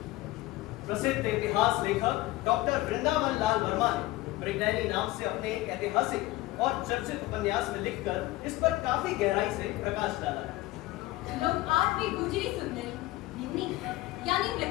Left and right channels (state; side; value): quieter; right; 17.9 dB